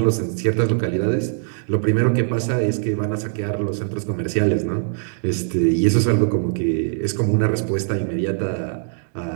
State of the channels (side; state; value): left; silent; digital silence